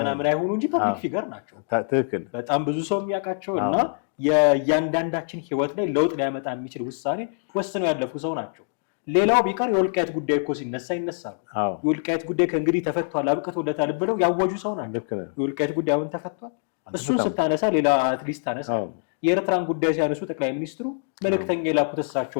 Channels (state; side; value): silent; right; digital silence